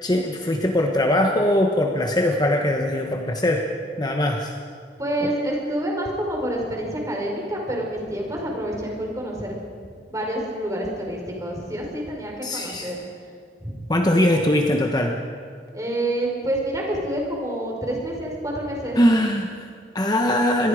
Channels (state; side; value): normal; both; correlation 0.64